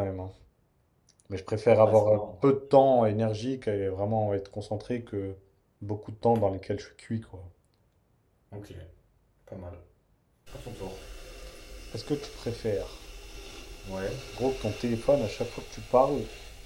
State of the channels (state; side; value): identical; both; correlation 1.00